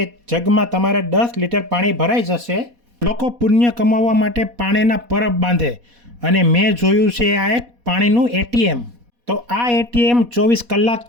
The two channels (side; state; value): left; late; 4.1 ms